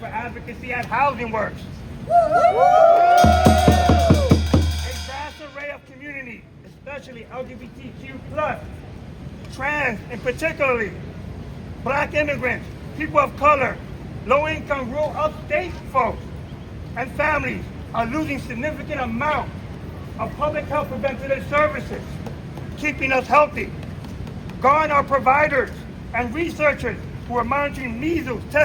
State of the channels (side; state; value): both; identical; correlation 1.00